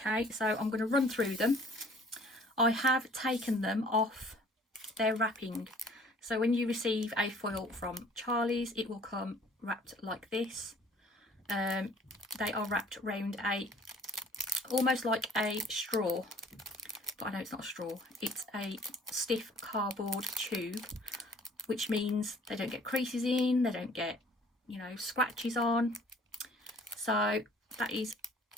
so I'm going to run through them. I have taken them off their wrapping. So when you receive a foil from Charlie's, it will come wrapped like this. They are wrapped around almost like a straw, but I know it's not a straw. It's a stiff cardboard tube, which means they don't get creases in, they don't get, you know, scratches on. So that is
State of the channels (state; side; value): normal; both; correlation 0.54